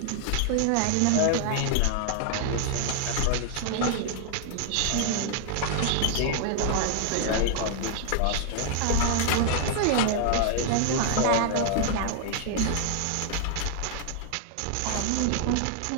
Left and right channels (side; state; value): both; different; correlation 0.00